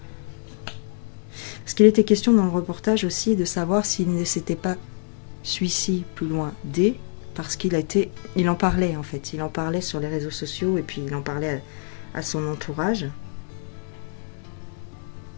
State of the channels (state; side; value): silent; right; 62 dB below the other